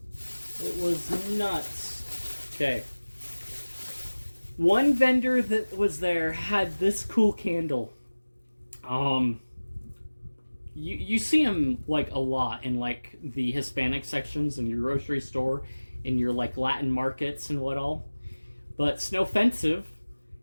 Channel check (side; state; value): both; inverted; correlation -1.00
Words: It was nuts. Okay. One vendor that was there had this cool candle. You see them like a lot in like the Hispanic sections in your grocery store, in your like Latin markets and what all. But Snowfensive